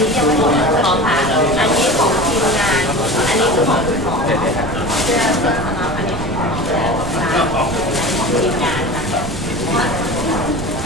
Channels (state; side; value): noise; right; rumble, 9 dB below the sound